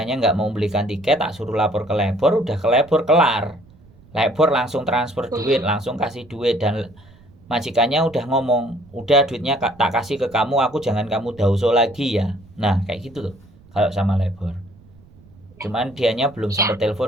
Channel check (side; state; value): right; noise; rumble, 25 dB below the sound